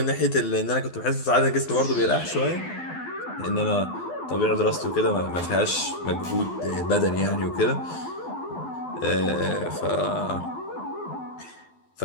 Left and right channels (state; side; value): late; right; 12 ms